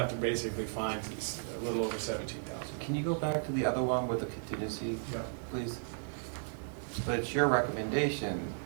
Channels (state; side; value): silent; left; digital silence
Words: to basically find a little over $17,000. Can you go back to the other one with the contingency, Yep. please? But it's your recommendation,